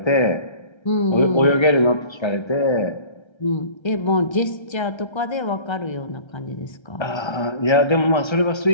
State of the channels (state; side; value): late; right; 1.3 ms